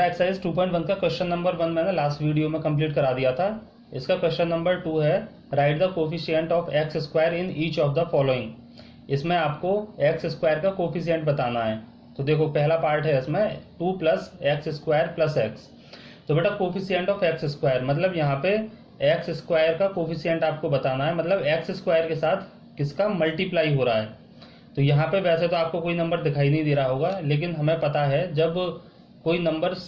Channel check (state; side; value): identical; both; correlation 1.00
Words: exercise 2.1 का क्वेश्चन नंबर 1 मैंने लास्ट वीडियो में कंप्लीट करा दिया था। इसका क्वेश्चन नंबर 2 है right the coefficient of x square in each of the following. इसमें आपको एक्स स्क्वायर का कोफिशिएंट बताना है। तो देखो पहला पार्ट है इसमें 2 plus x square plus x. तो बेटा कोफिशिएंट ऑफ एक्स स्क्वायर मतलब यहाँ पे एक्स स्क्वायर का कोफिशिएंट आपको बताना है, मतलब एक्स स्क्वायर के साथ किसका मल्टीप्लाई हो रहा है। तो यहाँ पे वैसे तो आपको कोई नंबर दिखाई नहीं दे रहा होगा, लेकिन हमें पता है जब कोई नंबर